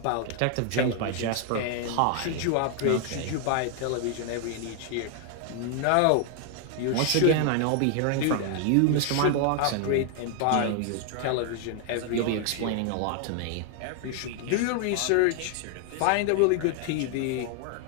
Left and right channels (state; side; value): different; both; correlation 0.00